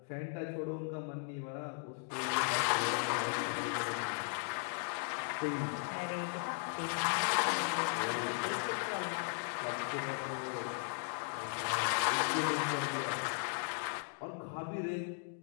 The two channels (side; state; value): right; silent; 53 dB below the other